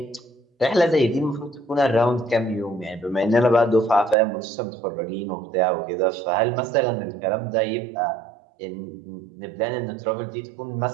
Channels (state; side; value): drops out; left; at 4.2 s